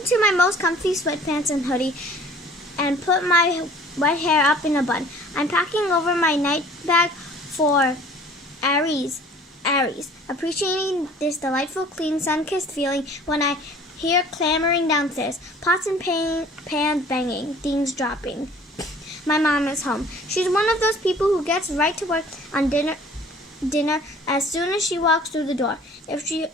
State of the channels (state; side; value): normal; both; correlation 0.50